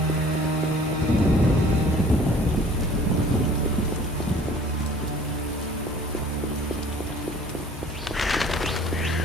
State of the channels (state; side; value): normal; both; correlation 0.50